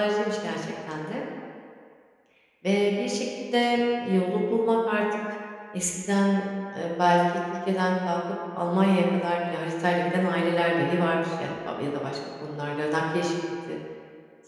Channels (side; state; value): both; identical; correlation 1.00